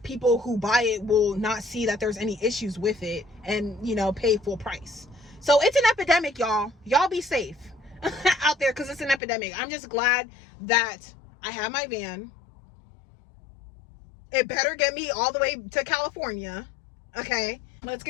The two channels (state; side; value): drops out; right; at 9.2 s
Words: people who buy it will not see that there's any issues with it, and, pay full price. So it's an epidemic, y'all. Y'all be safe out there, because it's an epidemic. I'm just glad that I have my van. It better get me all the way to California. Okay, let's